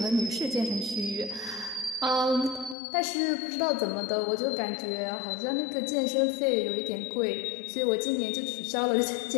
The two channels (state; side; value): drops out; right; at 2.8 s